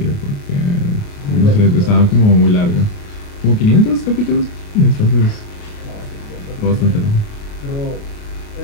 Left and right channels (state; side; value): late; right; 28 ms